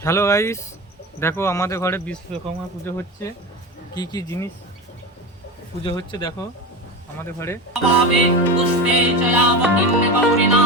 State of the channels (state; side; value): normal; both; correlation 0.24